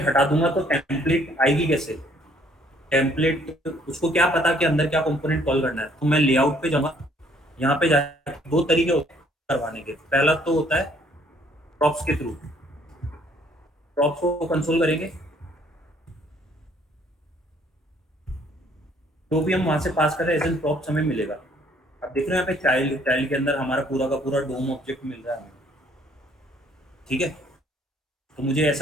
हटा दूंगा तो टेम्पलेट आएगी कैसे, टेम्पलेट उसको क्या पता कि अंदर क्या कंपोनेंट कॉल करना है। तो मैं लेआउट पे जाऊंगा, यहाँ पे जाके दो तरीके होते हैं करवाने के। पहला तो होता है प्रॉप्स के थ्रू, प्रॉप्स को कंसोल करेंगे, जो भी हम वहां से पास कर रहे हैं एज एन प्रॉप्स हमें मिलेगा। अब देख रहे हैं यहाँ पे चाइल्ड के अंदर हमारा पूरा का पूरा डोम ऑब्जेक्ट मिल रहा है हमें, ठीक है। तो मुझे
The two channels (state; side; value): normal; both; correlation 0.62